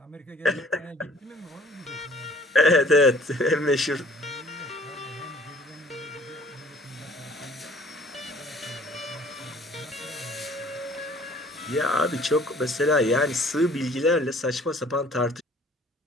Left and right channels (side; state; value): both; normal; correlation 0.54